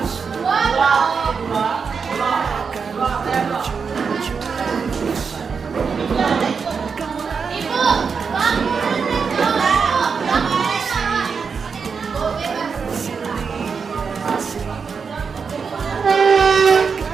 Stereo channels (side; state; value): left; quieter; 5.7 dB